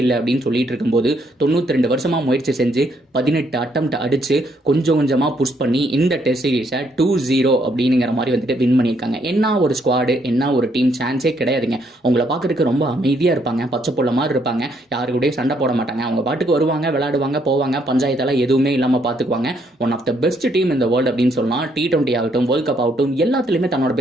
இல்லை அப்படின்னு சொல்லிட்டு இருக்கும்போது 92 வருஷமா முயற்சி செஞ்சு 18 அட்டம்ப்ட் அடிச்சு கொஞ்சம் கொஞ்சமா புஷ் பண்ணி இந்த டெஸ்ட் சீரீஸை 2-0 அப்படிங்கிற மாதிரி வந்துட்டு வின் பண்ணியிருக்காங்க. என்ன ஒரு ஸ்குவாடு, என்ன ஒரு டீம், சான்ஸே கிடையாதுங்க. உங்களை பார்க்கறதுக்கு ரொம்ப அமைதியா இருப்பாங்க, பச்சை புள்ள மாதிரி இருப்பாங்க, யாரு கூட சண்டை போட மாட்டாங்க, அவங்க பாட்டுக்கு வருவாங்க, விளையாடுவாங்க, போவாங்க, பஞ்சாயத்தெல்லாம் எதுவுமே இல்லாம பாத்துக்குவாங்க. One of the best team இந்த வேர்ல்டு அப்படின்னு சொல்லலாம். T20 ஆகட்டும், வேர்ல்ட் கப் ஆகட்டும், எல்லாத்துலயுமே தன்னோட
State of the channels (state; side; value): normal; both; correlation 0.71